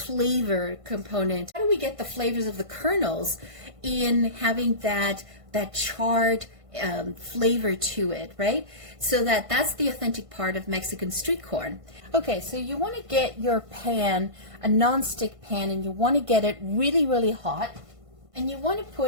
component? How do we get the flavors of the kernels in having that charred flavor to it, right? So that's the authentic part of Mexican street corn. Okay, so you want to get your pan, a non-stick pan, and you want to get it really, really hot. And you want to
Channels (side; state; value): left; late; 1.5 ms